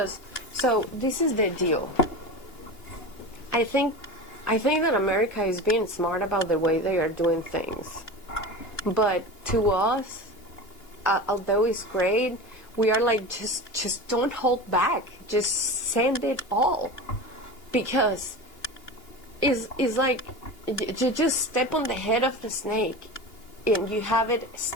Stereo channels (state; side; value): late; right; 2.7 ms